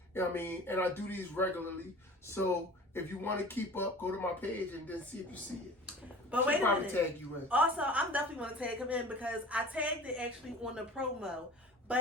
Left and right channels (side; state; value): both; normal; correlation 0.41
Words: You know what I mean? And I do these regularly. So if you want to keep up, go to my page and then see if you see it. But wait a minute. Tag you in. Also, I'm definitely going to tag him in because I tagged it actually on the promo.